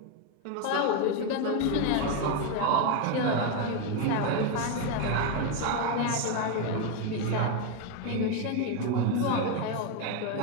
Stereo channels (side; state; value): both; different; correlation 0.02